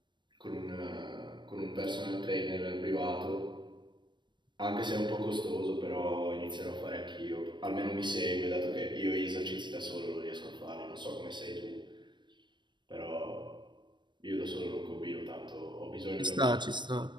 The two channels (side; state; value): left; late; 0.22 ms